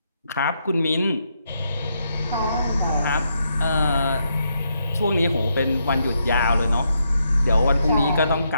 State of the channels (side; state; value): both; inverted; correlation -0.79